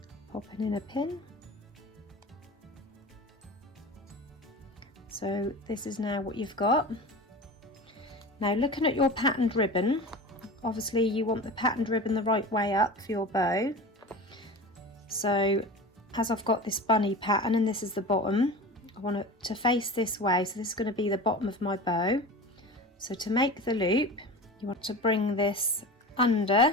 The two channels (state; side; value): normal; both; correlation 0.32